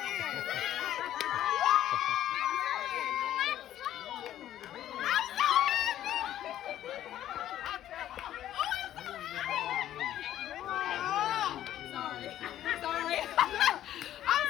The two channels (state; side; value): quieter; right; 12.2 dB